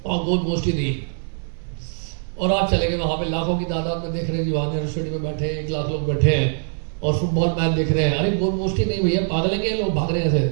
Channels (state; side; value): silent; left; 64 dB below the other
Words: और गोल पोस्ट ही नहीं, और आप चले गए वहां पे लाखों की तादाद में देख रहे हैं जी, वहां नेहरू स्टेडियम में बैठे 1 लाख लोग बैठे हैं और फुटबॉल मैच देख रहे हैं। अरे गोल पोस्ट ही नहीं भैया, पागलेंगे लोग, भाग रहे हैं